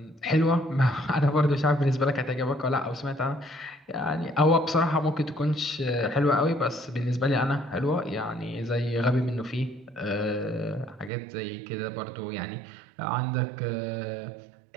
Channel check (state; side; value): drops out; left; at 11.1 s